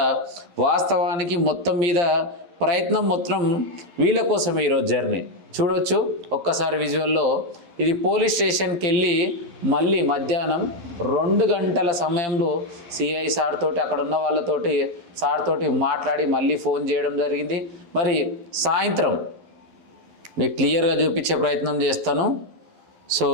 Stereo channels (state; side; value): late; left; 12 ms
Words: వాస్తవానికి మొత్తం మీద ప్రయత్నం మొత్తం వీళ్ళ కోసమే ఈరోజు జర్నీ చూడొచ్చు. ఒక్కసారి విజువల్లో ఇది పోలీస్ స్టేషన్కి వెళ్ళి మళ్ళీ మధ్యాహ్నం 2 గంటల సమయంలో సిఐ సార్ తోటి అక్కడ ఉన్న వాళ్ళతోటి సార్ తోటి మాట్లాడి మళ్ళీ ఫోన్ చేయడం జరిగింది. మరి సాయంత్రం మీకు క్లియర్గా చూపించే ప్రయత్నం చేస్తాను. సో